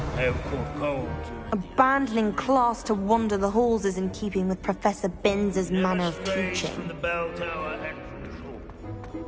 have caught cold. Abandoning class to wander the halls is in keeping with Professor Binns' manner of teaching. From the bell tower entrance hall.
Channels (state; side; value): identical; both; correlation 1.00